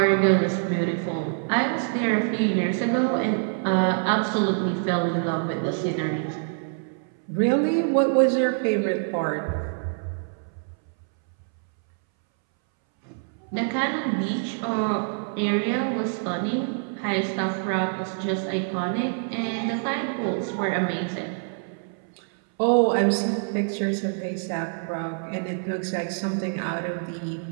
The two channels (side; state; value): left; silent; 61 dB below the other